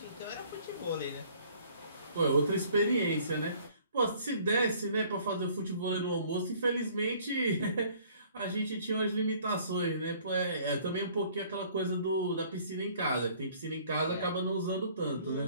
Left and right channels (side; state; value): both; inverted; correlation -0.56